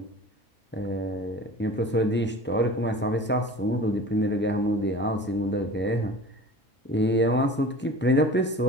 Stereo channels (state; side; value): normal; both; correlation 0.39